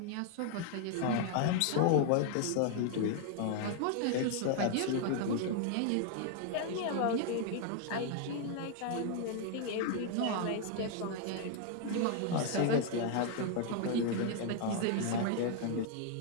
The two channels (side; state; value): both; different; correlation 0.00